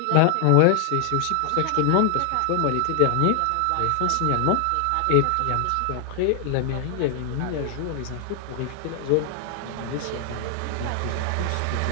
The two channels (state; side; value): different; both; correlation 0.00